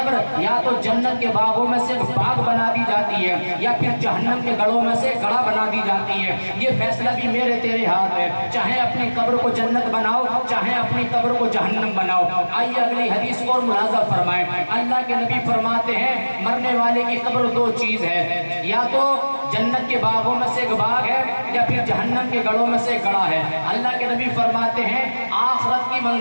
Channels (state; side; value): inverted; both; correlation -1.00